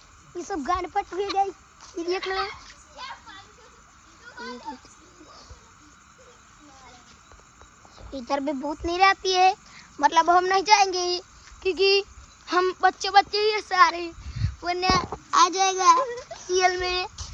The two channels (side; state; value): both; identical; correlation 1.00